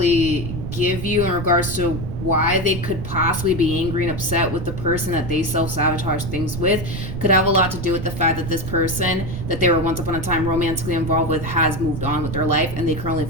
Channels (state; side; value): noise; right; rumble, 6 dB below the sound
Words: give you in regards to why they could possibly be angry and upset with the person that they self-sabotage things with could have a lot to do with the fact that this person that they were once upon a time romantically involved with has moved on with their life, and they currently